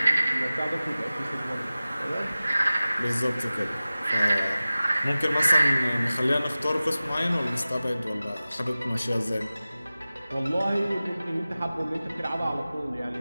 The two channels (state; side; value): inverted; both; correlation -0.97